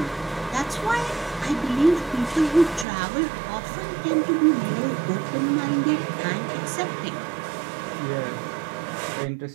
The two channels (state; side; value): drops out; left; at 2.9 s